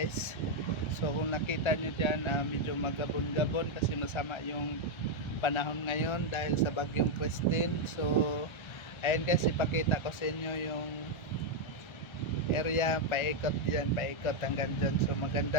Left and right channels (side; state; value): right; late; 1.3 ms